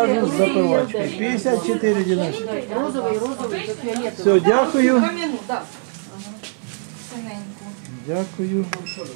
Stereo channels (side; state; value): left; silent; 58 dB below the other